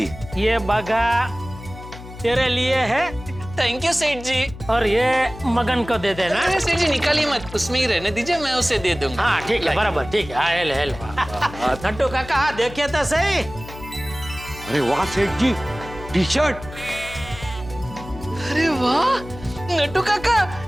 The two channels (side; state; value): left; noise; hum, 14 dB below the sound